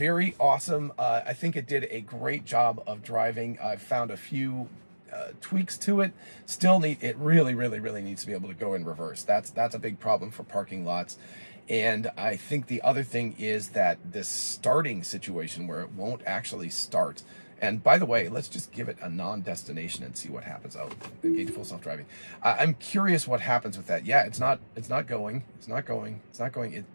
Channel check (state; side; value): inverted; both; correlation -1.00